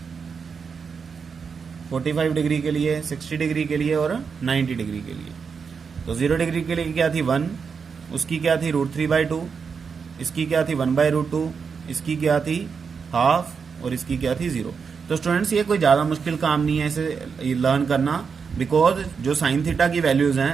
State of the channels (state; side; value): quieter; left; 5.8 dB